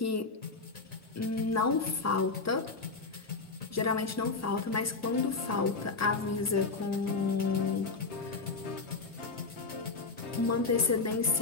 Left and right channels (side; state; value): right; quieter; 4.0 dB